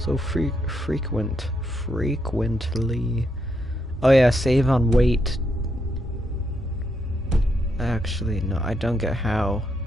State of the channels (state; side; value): normal; both; correlation 0.79